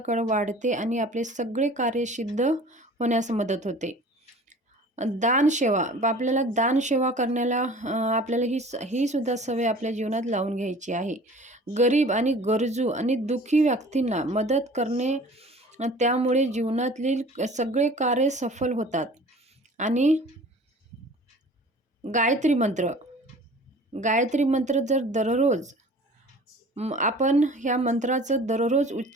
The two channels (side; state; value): both; normal; correlation 0.45